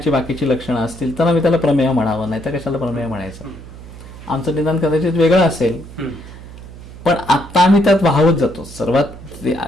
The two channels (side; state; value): right; noise; hum, 16 dB below the sound